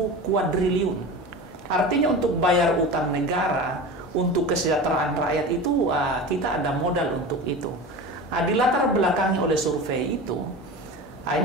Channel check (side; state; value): both; normal; correlation 0.31